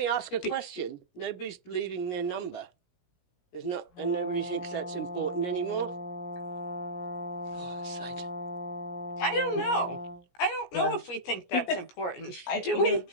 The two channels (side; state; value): right; late; 17 ms